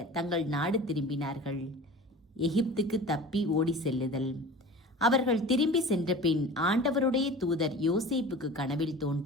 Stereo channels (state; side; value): normal; both; correlation 0.38